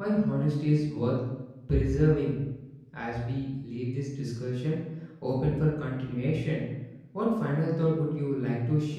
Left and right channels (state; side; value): identical; both; correlation 1.00